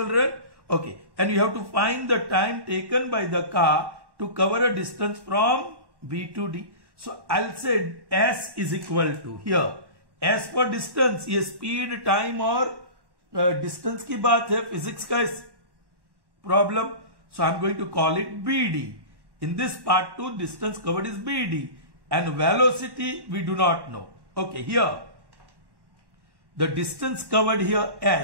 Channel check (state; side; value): late; left; 1.1 ms